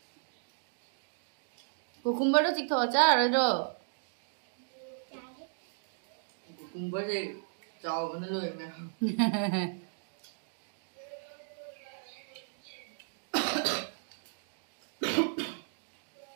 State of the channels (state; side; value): silent; left; digital silence